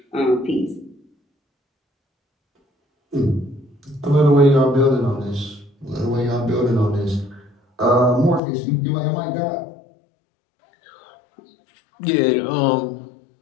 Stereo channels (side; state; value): right; drops out; at 8.4 s